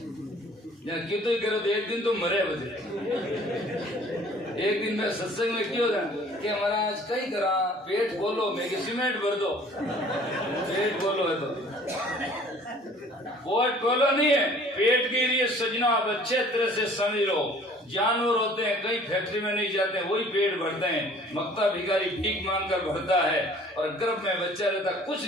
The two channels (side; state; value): both; normal; correlation 0.52